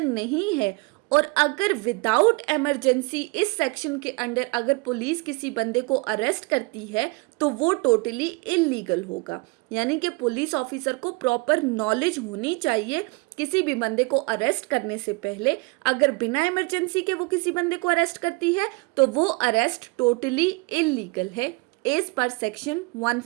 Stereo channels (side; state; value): left; quieter; 27.2 dB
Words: नहीं है और अगर विदाउट इमरजेंसी इस सेक्शन के अंडर अगर पुलिस किसी बंदे को अरेस्ट करती है तो वो टोटली इल्लीगल होगा, यानी कि पुलिस ऑफिसर को प्रॉपर नॉलेज होनी चाहिए किसी भी बंदे को अरेस्ट करने से पहले। अगर बिना इमरजेंसी के वो किसी बंदे को अरेस्ट करती है तो वो अरेस्ट टोटली इल्लीगल है एज पर सेक्शन